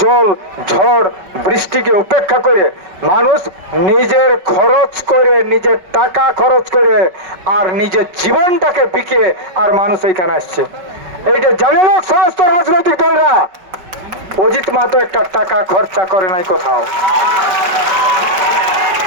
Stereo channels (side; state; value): left; late; 5.1 ms